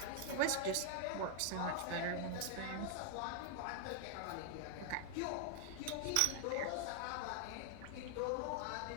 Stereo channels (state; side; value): different; both; correlation 0.00